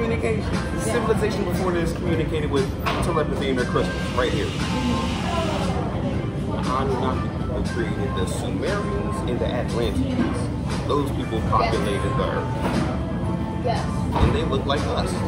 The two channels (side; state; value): both; identical; correlation 1.00